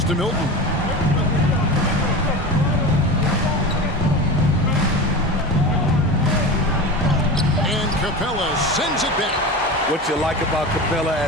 to Milton. And Capella sends it back. What you like about Capella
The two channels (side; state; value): both; normal; correlation 0.28